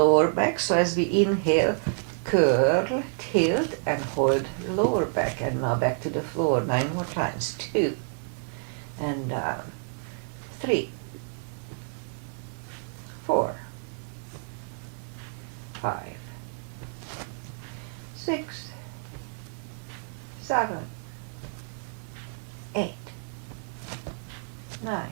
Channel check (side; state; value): left; silent; 59 dB below the other